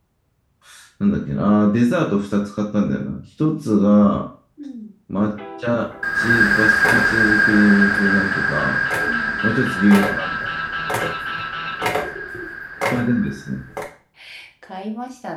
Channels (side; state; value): both; identical; correlation 1.00